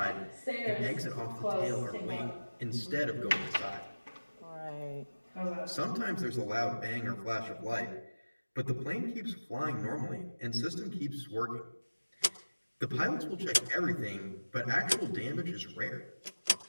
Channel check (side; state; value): both; inverted; correlation -1.00